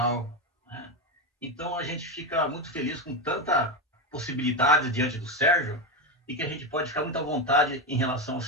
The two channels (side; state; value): both; normal; correlation 0.13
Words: né? Então, a gente fica muito feliz com tanta possibilidade diante do Sérgio e que a gente pode ficar muito à vontade em relação